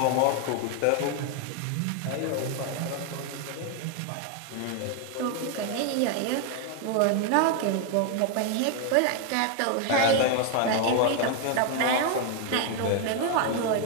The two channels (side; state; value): both; different; correlation 0.01